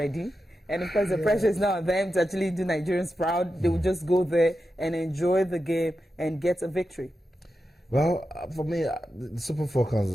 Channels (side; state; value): both; normal; correlation 0.90